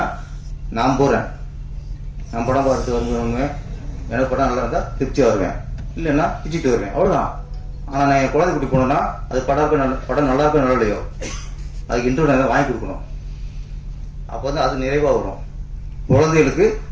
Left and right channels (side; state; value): both; identical; correlation 1.00